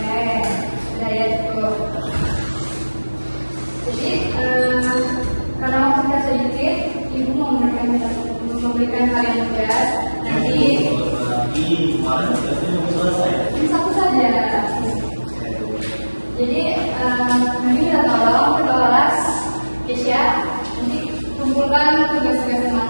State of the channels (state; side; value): inverted; both; correlation -1.00